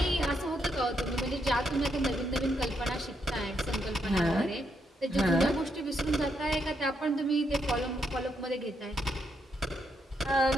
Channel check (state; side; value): normal; both; correlation 0.78